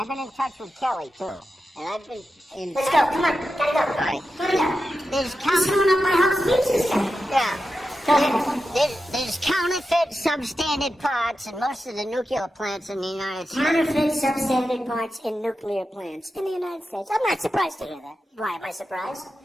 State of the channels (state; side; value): normal; both; correlation 0.90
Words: been in touch with Kelly, too. And I've been in... Let's go, come on, gotta go. All right. Gotta go. There's coming up my house. Yeah. There's counterfeit substandard parts in most of the nuclear plants in the United States. Counterfeit substandard parts in nuclear plants in the United States. I'm not surprised to hear that. Why am I surprised?